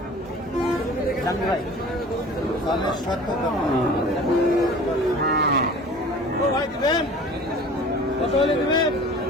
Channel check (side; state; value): both; normal; correlation 0.43